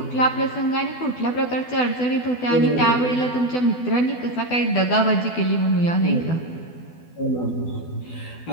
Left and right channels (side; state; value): right; late; 12 ms